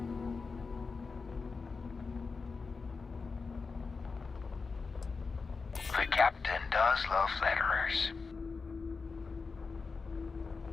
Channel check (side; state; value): right; quieter; 4.6 dB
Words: The captain does love flatterers.